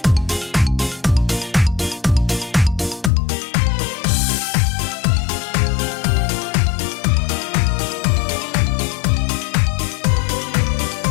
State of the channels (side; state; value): right; drops out; at 3.1 s